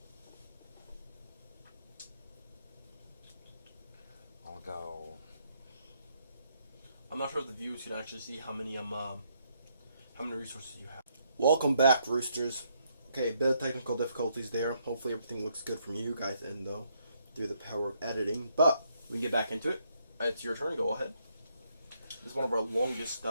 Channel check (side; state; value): both; inverted; correlation -0.73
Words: I'll go. I'm not sure if the viewers can actually see how many resources you have. Welcome back, Roosters. Okay, a bit of technical difficulties there. Hopefully everything looks good from you guys end though, through the power of editing. But we can get back into it. It's your turn. Go ahead. This is one of our longest